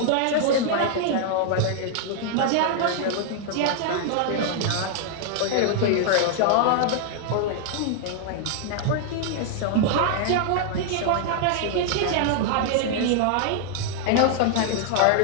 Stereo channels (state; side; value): different; both; correlation 0.00